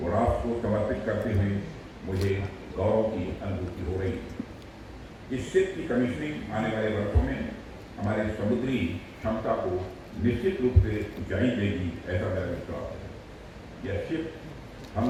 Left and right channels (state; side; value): identical; both; correlation 1.00